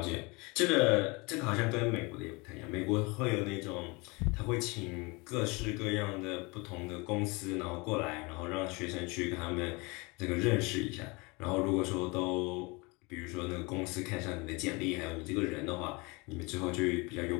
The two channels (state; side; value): quieter; right; 27.1 dB